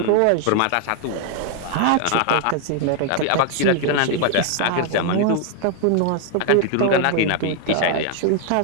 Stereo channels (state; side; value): different; both; correlation 0.00